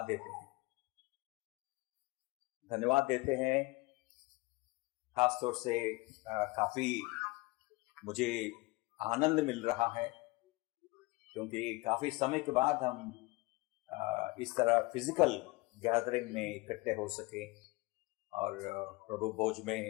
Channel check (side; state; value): right; quieter; 23.3 dB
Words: देते हैं। धन्यवाद देते हैं खासतौर से काफी मुझे आनंद मिल रहा है, क्योंकि काफी समय के बाद हम इस तरह फिजिकल गैदरिंग में इकट्ठे हो सके और प्रभु भोज में